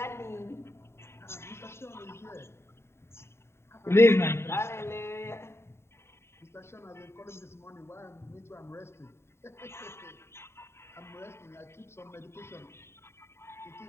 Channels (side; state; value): right; late; 0.12 ms